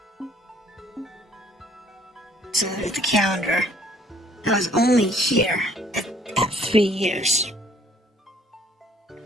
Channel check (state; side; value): normal; both; correlation 0.60